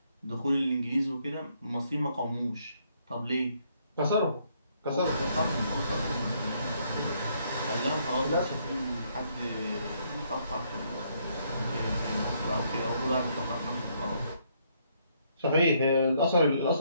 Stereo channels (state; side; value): inverted; both; correlation -0.71